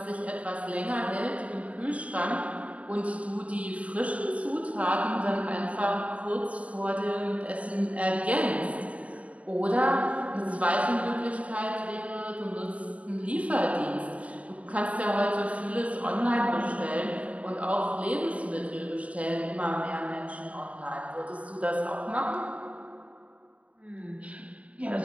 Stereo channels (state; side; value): late; left; 0.066 ms